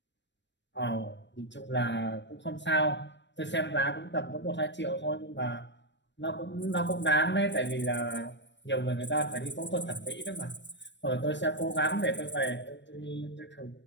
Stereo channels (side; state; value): right; late; 0.53 ms